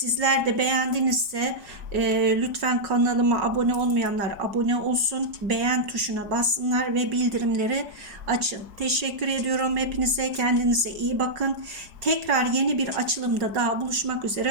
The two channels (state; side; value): late; left; 4.9 ms